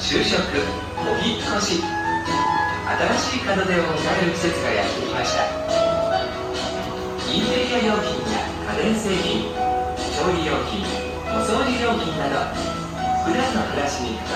職、お引っ越し、新しい門出を迎える季節がやってきました。インテリア用品や家電製品、調理用品、お掃除用品など普段の暮らしに欠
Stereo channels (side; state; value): both; identical; correlation 1.00